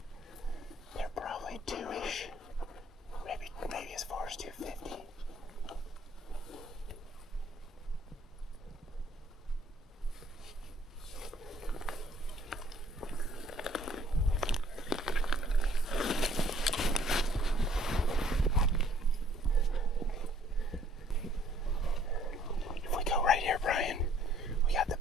They're probably two-ish. Maybe as far as 250. If we go right here, Brian, we got the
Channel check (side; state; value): both; normal; correlation 0.60